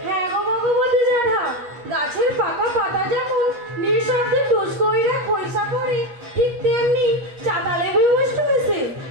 হ্যাঁ গো ভগবতী জ্যাঠা, গাছের পাকা পাতা যেমন নিঃশব্দে টুস কইরা খইসা পড়ে, ঠিক তেমনি চাতালে ভূমিষ্ঠ হয়েছে।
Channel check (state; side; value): late; left; 8.3 ms